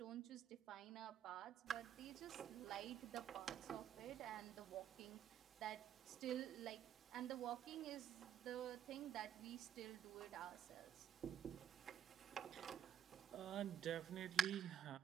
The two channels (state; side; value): quieter; left; 9.6 dB